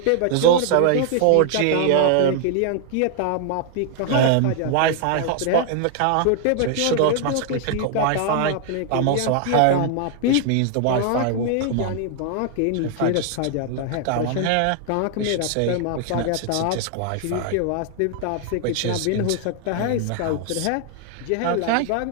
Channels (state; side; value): different; both; correlation 0.00